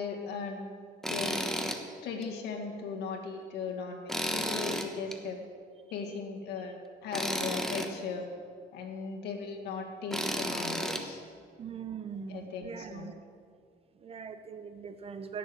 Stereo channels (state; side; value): normal; both; correlation 0.51